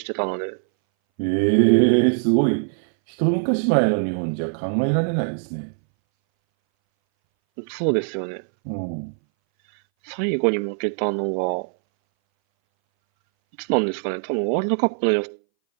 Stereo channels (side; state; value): left; silent; 62 dB below the other